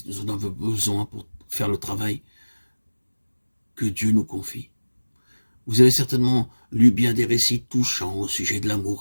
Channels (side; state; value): both; inverted; correlation -1.00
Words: nous en avons besoin pour faire le travail que Dieu nous confie. Vous avez certainement lu bien des récits touchants au sujet de